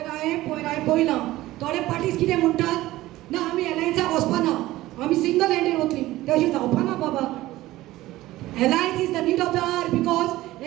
पळयलां. थोडे पार्टीज कितें म्हणटात? ना आमी एलायन्साक वचपाना. आमी सिंगल हँडेड वतली. ते अशें जावपाना बाबा. Alliance is the need of the hour because,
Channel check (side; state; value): left; quieter; 16.8 dB